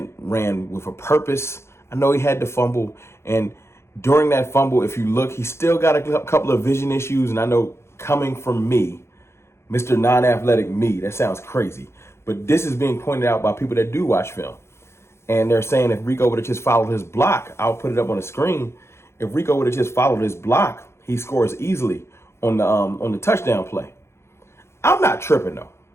a purpose. I know he had to fumble. And during that fumble, if you look, he still got a couple of vision issues. And I know coming from me, Mr. Non-Athletic me, that sounds crazy. But this is being pointed out by people that do watch film. And they're saying if Rico would have just followed his block, I'll put it up on the screen. If Rico would have just followed his block, he scores easily on the touchdown play. I'm not tripping, though.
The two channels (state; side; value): late; right; 0.13 ms